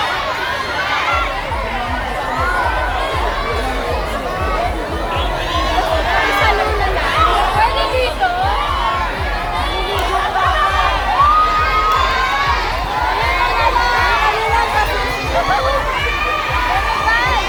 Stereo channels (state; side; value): identical; both; correlation 1.00